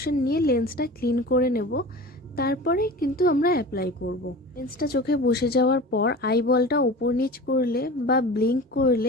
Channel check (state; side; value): normal; both; correlation 0.35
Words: নিয়ে লেন্সটা ক্লিন করে নেব, তারপরে কিন্তু আমরা অ্যাপ্লাই করব। লেন্সটা চোখে বসে যাওয়ার পর আইবলটা উপর নিচ করলে বা ব্লিঙ্ক